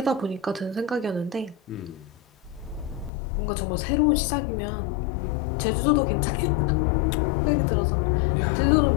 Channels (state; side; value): drops out; right; at 3.1 s